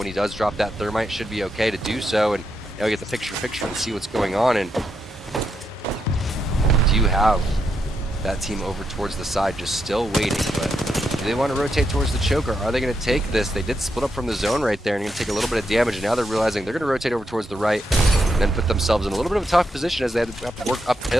he does drop that Thermite. Should be okay to do so, and now we get the picture and see what's going on. And do you have that team over towards the side just still waiting? But do they want to rotate towards the choker? Are they going to take this? They did split up from the zone right there and going to take a little bit of damage, and now they're realizing they're going to rotate over towards the right and then put themselves in a little bit of a tough position as they have to work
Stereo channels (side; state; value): both; normal; correlation 0.82